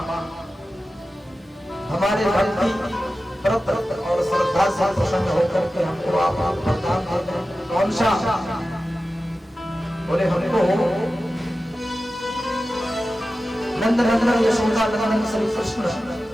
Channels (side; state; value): both; normal; correlation 0.94